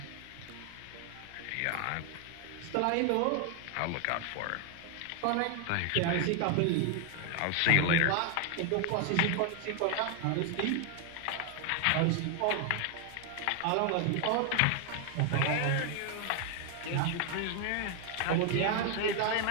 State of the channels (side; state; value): both; different; correlation 0.00